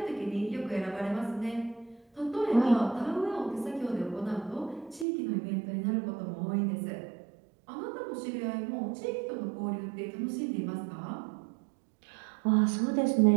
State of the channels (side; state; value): left; drops out; at 5.1 s